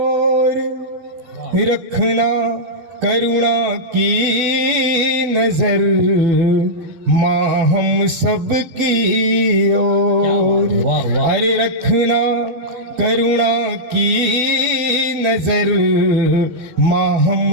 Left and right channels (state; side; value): late; left; 12 ms